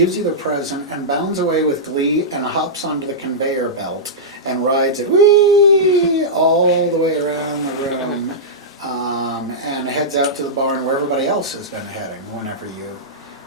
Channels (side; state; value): both; normal; correlation -0.13